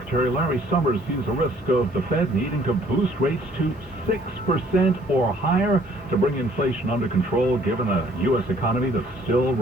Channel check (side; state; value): both; normal; correlation 0.60